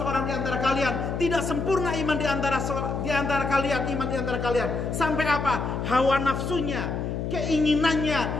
di antara kalian, tidak sempurna iman di antara kalian, iman di antara kalian. Sampai apa? Hawa nafsunya,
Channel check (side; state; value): left; noise; hum, 3 dB below the sound